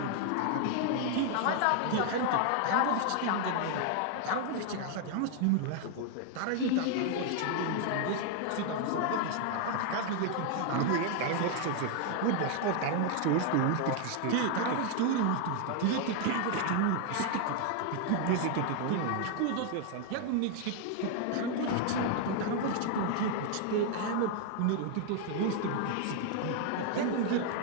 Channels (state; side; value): different; both; correlation 0.00